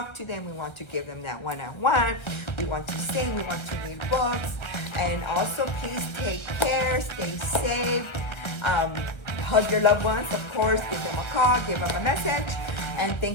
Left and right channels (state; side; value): late; right; 1.3 ms